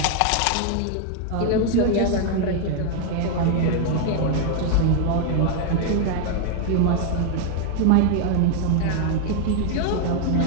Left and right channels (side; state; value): both; different; correlation 0.00